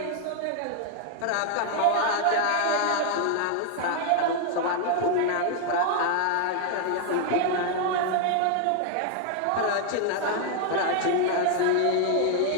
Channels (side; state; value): both; different; correlation 0.00